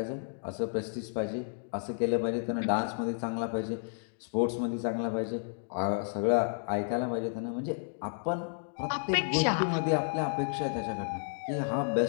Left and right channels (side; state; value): right; silent; digital silence